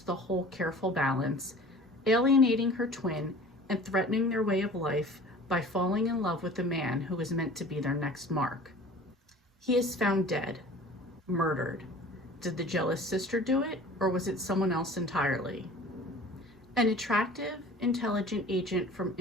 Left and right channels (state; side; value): normal; both; correlation 0.44